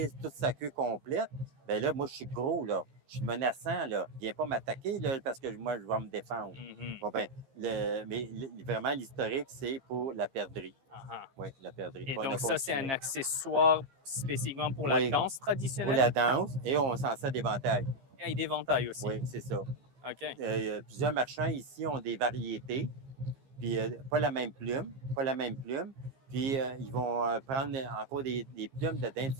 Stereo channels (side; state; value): left; late; 15 ms